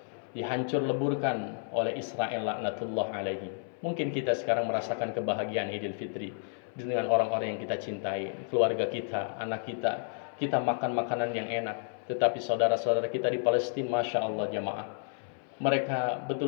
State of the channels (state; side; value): silent; right; 57 dB below the other